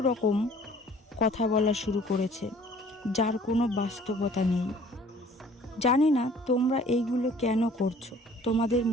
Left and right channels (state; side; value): normal; both; correlation 0.53